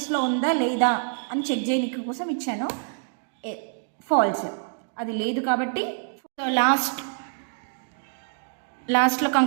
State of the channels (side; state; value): left; silent; digital silence